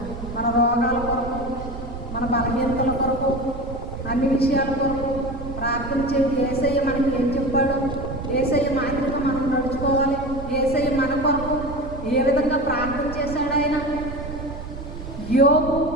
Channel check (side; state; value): right; noise; rumble, 10 dB below the sound